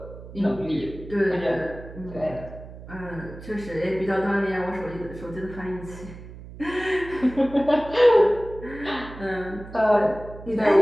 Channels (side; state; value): right; noise; hum, 15 dB below the sound